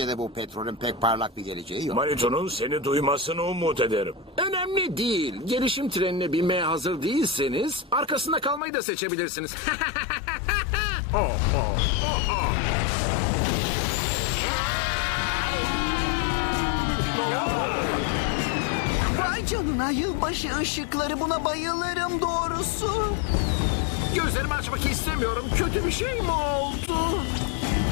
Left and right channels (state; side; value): drops out; right; at 8.6 s